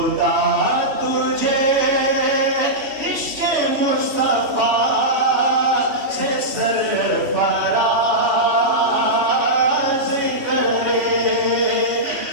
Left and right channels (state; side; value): late; left; 3.1 ms